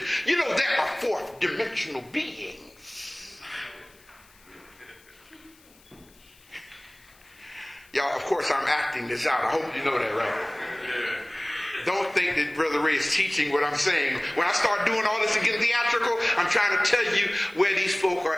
You know, there are fourth dimensional beings. Y'all, of course, I'm acting this out. I hope you know that, right? Don't think that Brother Ray is teaching what I'm saying. When I start doing all this and getting theatrical, I'm trying to tell you where these folk are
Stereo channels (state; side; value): noise; left; hiss, 28 dB below the sound